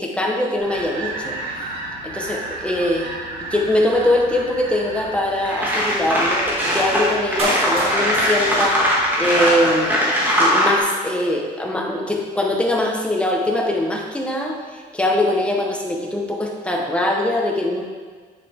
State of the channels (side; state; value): both; normal; correlation 0.48